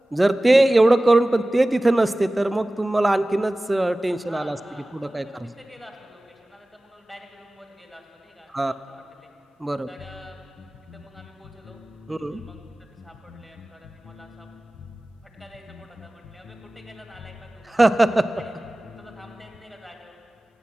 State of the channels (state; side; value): normal; both; correlation 0.97